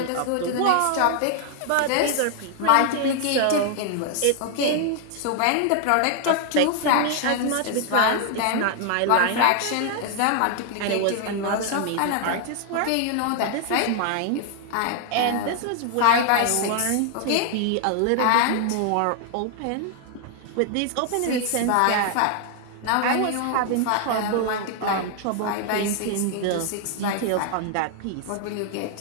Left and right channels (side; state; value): both; different; correlation 0.00